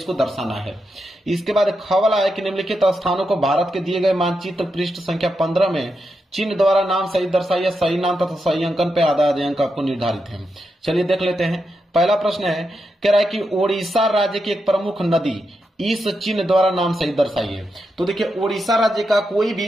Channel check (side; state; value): both; normal; correlation 0.85